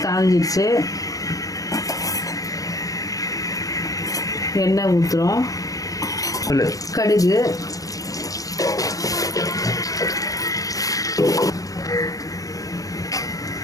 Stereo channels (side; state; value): right; late; 0.17 ms